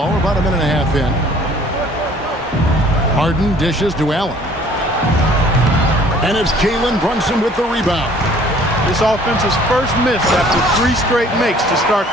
we're about a minute and a half in. Harden dishes to Allen. And it's Jalen Brunson with the rebound. This offense's first miss after 3 straight makes to start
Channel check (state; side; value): normal; both; correlation 0.55